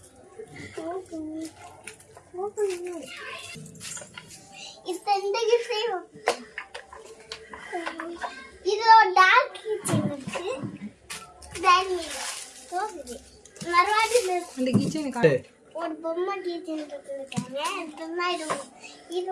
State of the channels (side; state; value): both; identical; correlation 1.00